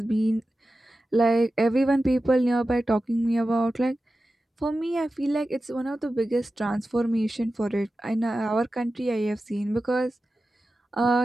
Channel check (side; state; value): both; normal; correlation 0.94